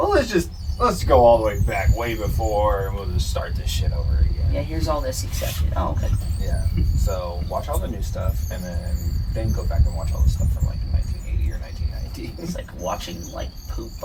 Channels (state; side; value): identical; both; correlation 1.00